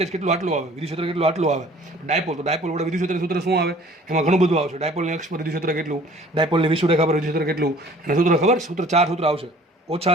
કેટલું આટલું આવે, વિદ્યુત ક્ષેત્ર કેટલું આટલું આવે. ડાયપોલ, તો ડાયપોલ વડે વિદ્યુત ક્ષેત્ર સૂત્ર શું આવે? એમાં ઘણું બધું આવશે. ડાયપોલની અક્ષ પર વિદ્યુત ક્ષેત્ર કેટલું, ડાયપોલની વિષુવરેખા પર વિદ્યુત ક્ષેત્ર કેટલું, અને સૂત્ર ખબર? સૂત્ર 4 સૂત્ર આવશે. ઓછા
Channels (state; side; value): normal; both; correlation 0.52